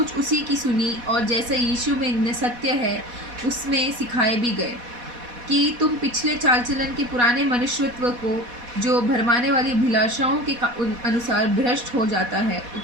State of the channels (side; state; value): left; late; 4.1 ms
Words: उसी की सुनी और जैसे यीशु में सत्य है उसमें सिखाए भी गए कि तुम पिछले चाल चलन के पुराने मनुष्यत्व को जो भरमाने वाली अभिलाषाओं के अनुसार भ्रष्ट हो जाता है